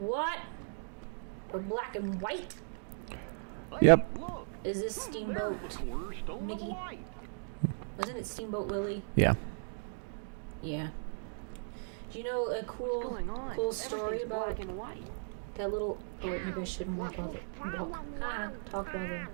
We're black and white? Yep. Is this Steamboat Mickey? Wasn't it Steamboat Willie? Yeah. Yeah. Do you know a cool story about that little... Oh wait, maybe I shouldn't talk while they're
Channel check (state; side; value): silent; left; digital silence